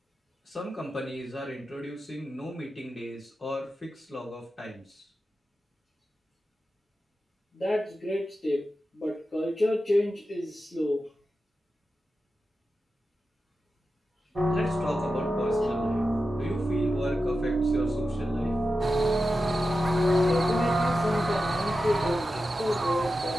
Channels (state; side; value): normal; both; correlation 0.91